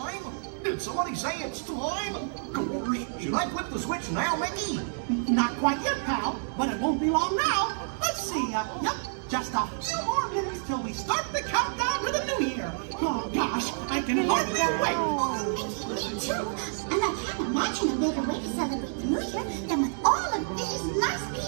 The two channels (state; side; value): silent; left; digital silence